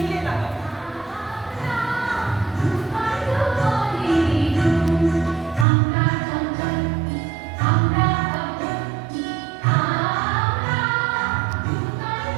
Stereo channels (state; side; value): drops out; left; at 5.7 s